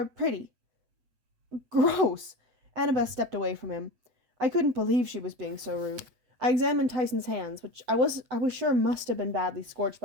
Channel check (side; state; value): left; late; 8.1 ms